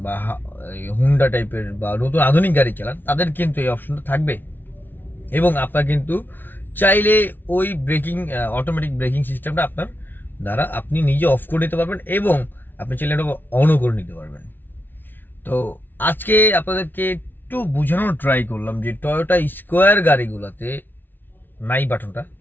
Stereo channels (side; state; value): right; late; 0.094 ms